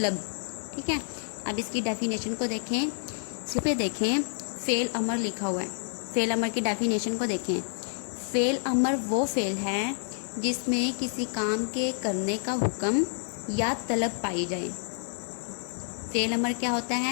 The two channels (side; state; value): right; silent; digital silence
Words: ٹھیک ہے۔ اب اس کی ڈیفینیشن کو دیکھیں، اس پہ دیکھیں فعل امر لکھا ہوا ہے۔ فعل امر کی ڈیفینیشن کو دیکھیں۔ فعل امر وہ فعل ہے جس میں کسی کام کے کرنے کا حکم یا طلب پائی جائے۔ فعل امر کیا ہوتا